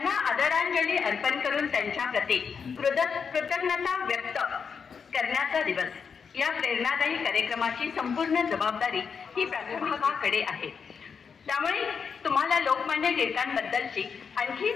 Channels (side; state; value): right; quieter; 6.1 dB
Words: आदरांजली अर्पण करून त्यांच्या प्रती कृतज्ञता व्यक्त करण्याचा दिवस। या प्रेरणादायी कार्यक्रमाची संपूर्ण जबाबदारी ही प्राध्यापकाकडे आहे। त्यामुळे तुम्हाला लोकमान्य टिळकांबद्दलची आणखी